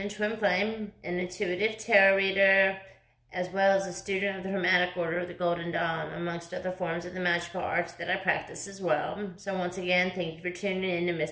Twin Flame, an intuitive tarot reader, as well as a student of the Hermetic Order of the Golden Dawn, amongst other forms of the magical arts that I practice as well. So once again, thank you for tuning in to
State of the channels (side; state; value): both; identical; correlation 1.00